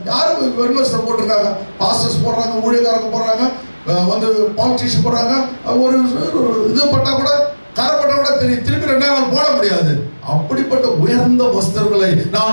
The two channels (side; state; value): both; inverted; correlation -1.00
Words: யாரு வெண்வஸ்திரம் போட்டிருக்காங்க, பாஸ்டர்ஸ் போடுறாங்க, ஊழியக்காரங்க போடுறாங்க, வந்து பாலிட்டிஷியன் போடுறாங்க, ஒரு இது பட்டா கூட கரப்பட்ட கூட திருப்பி 2 நாள் போட முடியாது. அப்படிப்பட்ட உயர்ந்த வஸ்திரங்களை